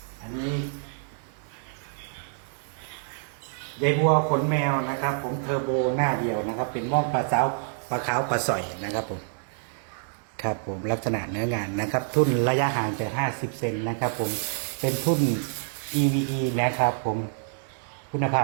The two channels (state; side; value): silent; left; digital silence